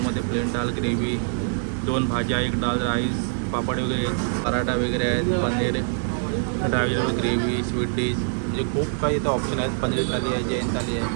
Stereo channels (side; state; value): left; silent; digital silence